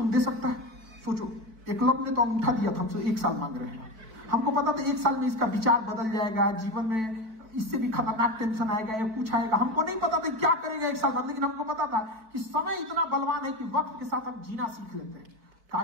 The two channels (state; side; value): late; left; 4.6 ms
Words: दे सकता है? सोचो, एकलव्य ने तो अंगूठा दिया था, हमसे 1 साल मांग रहे हैं। हमको पता था 1 साल में इसका विचार बदल जाएगा, जीवन में इससे भी खतरनाक टेंशन आएगा या कुछ आएगा। हमको नहीं पता था क्या करेगा 1 साल बाद, लेकिन हमको पता था कि समय इतना बलवान है कि वक्त के साथ हम जीना सीख लेते हैं। कहा